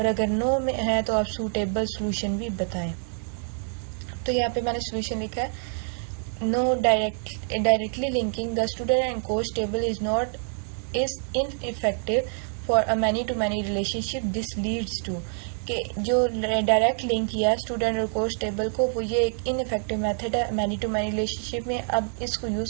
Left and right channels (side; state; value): left; silent; 59 dB below the other